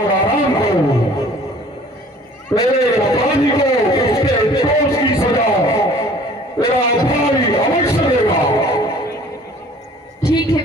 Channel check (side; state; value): both; normal; correlation 0.51